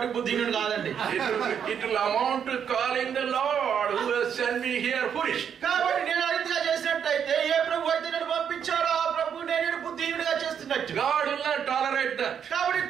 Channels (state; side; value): quieter; left; 8.0 dB